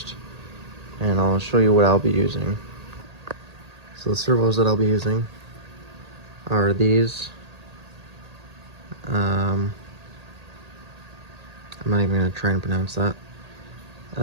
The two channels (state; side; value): late; left; 1.8 ms